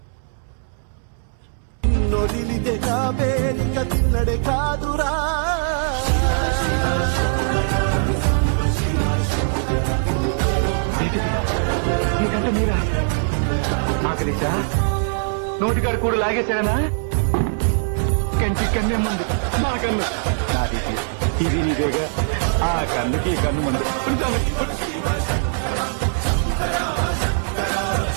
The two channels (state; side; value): silent; left; 65 dB below the other